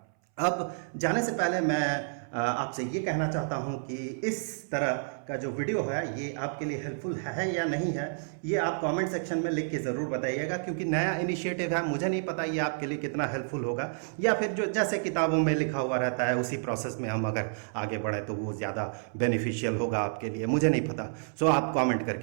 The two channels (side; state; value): left; silent; 58 dB below the other